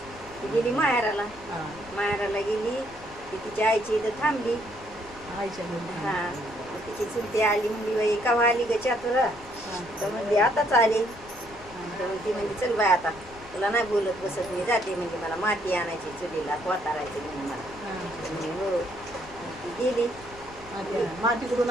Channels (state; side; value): noise; left; rumble, 20 dB below the sound